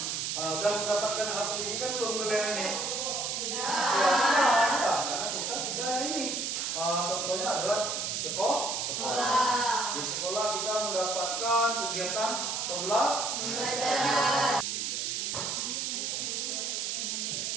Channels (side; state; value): right; noise; hiss, 1 dB below the sound